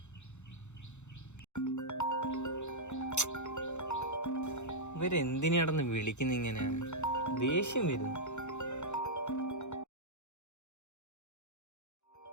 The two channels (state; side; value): late; right; 0.83 ms